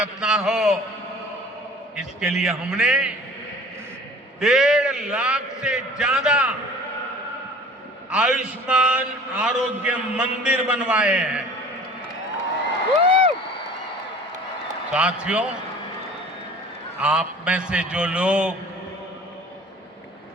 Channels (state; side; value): normal; both; correlation 0.46